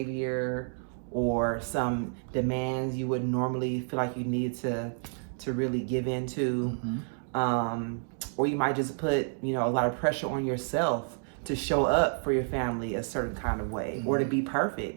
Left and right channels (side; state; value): left; silent; 56 dB below the other